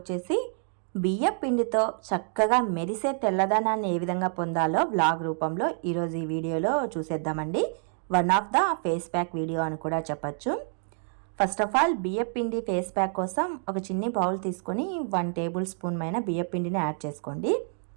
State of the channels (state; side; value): silent; left; 60 dB below the other